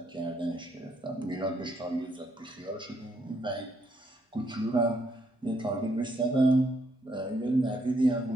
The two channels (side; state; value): both; normal; correlation 0.73